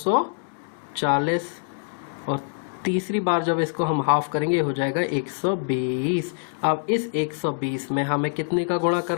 और तीसरी बार जब इसको हम हाफ करेंगे हो जाएगा 120। अब इस 120 में हमें कितने का गुणा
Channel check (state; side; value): silent; right; digital silence